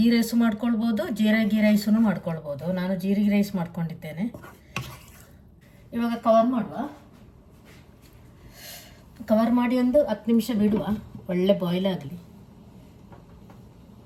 ರೈಸು ಮಾಡ್ಕೊಳ್ಬೋದು, ಜೀರಿಗೆ ರೈಸೂ ಮಾಡ್ಕೊಳ್ಬೋದು. ನಾನು ಜೀರಿಗೆ ರೈಸ್ ಮಾಡ್ಕೊಂಡಿದ್ದೇನೆ. ಇವಾಗ ಕವರ್ ಮಾಡಿ 10 ನಿಮಿಷ ಬಿಡುವ. ಒಳ್ಳೆ ಬಾಯ್ಲ್ ಆಗಲಿ.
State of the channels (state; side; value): identical; both; correlation 1.00